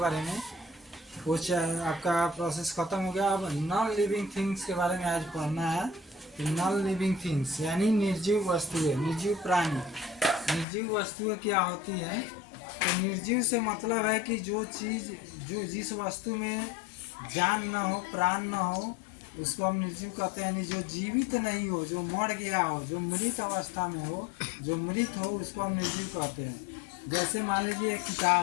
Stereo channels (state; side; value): drops out; right; at 10.7 s